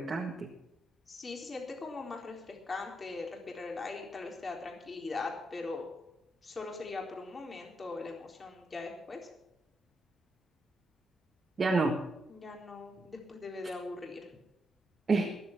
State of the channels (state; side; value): normal; both; correlation 0.82